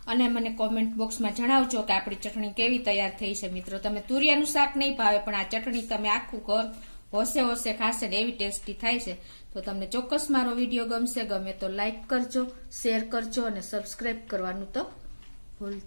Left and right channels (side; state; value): both; inverted; correlation -1.00